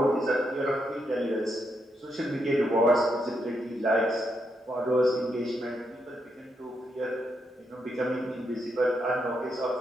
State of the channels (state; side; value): normal; both; correlation 0.80